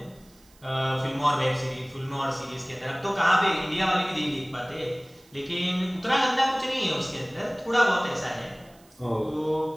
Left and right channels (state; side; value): noise; right; hiss, 28 dB below the sound